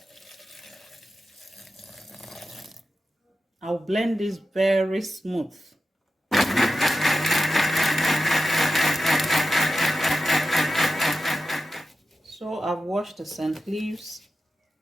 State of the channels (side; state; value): both; normal; correlation 0.91